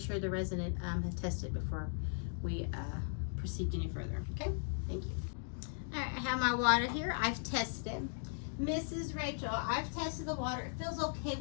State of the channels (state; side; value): silent; right; digital silence